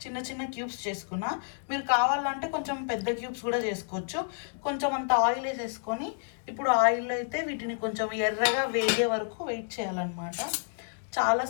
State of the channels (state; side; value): silent; right; 58 dB below the other